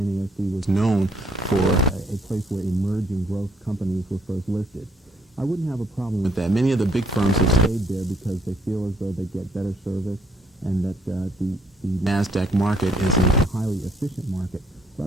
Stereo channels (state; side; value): normal; both; correlation 0.67